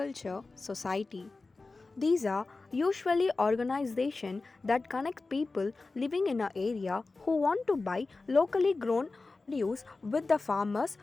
Society. These are usually organizations that connect people living in an area who want to buy locally grown produce with the farmers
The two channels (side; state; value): right; quieter; 3.7 dB